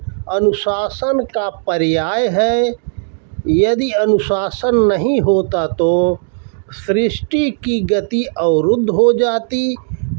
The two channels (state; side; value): silent; left; digital silence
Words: अनुशासन का पर्याय है। यदि अनुशासन नहीं होता तो सृष्टि की गति अवरुद्ध हो जाती।